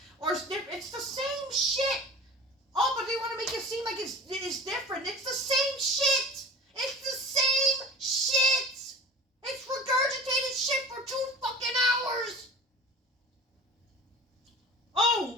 the same shit. Oh, but they want to make it seem like it's different. It's the same shit. It's the same shit. It's regurgitated shit for 2 fucking hours.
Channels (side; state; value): both; normal; correlation 0.39